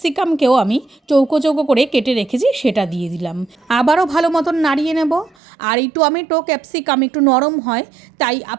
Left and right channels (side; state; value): left; drops out; at 5.4 s